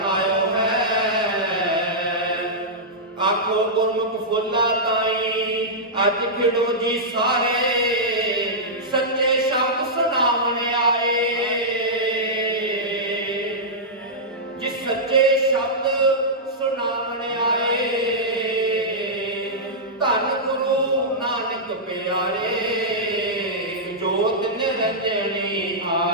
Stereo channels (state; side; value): normal; both; correlation -0.12